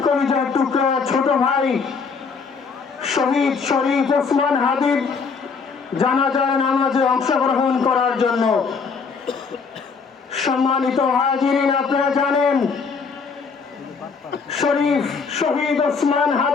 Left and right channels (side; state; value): right; quieter; 5.2 dB